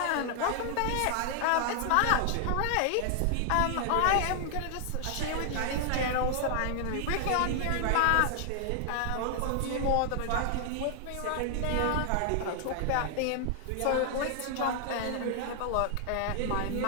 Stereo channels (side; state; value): both; different; correlation 0.00